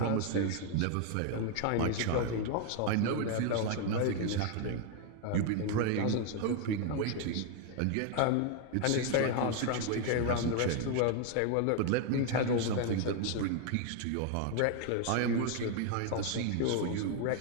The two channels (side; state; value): both; different; correlation 0.00